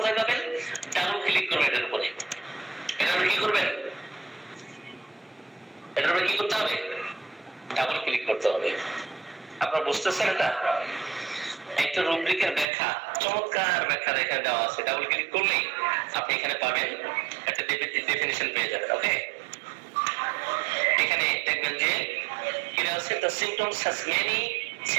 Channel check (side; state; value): left; drops out; at 12.7 s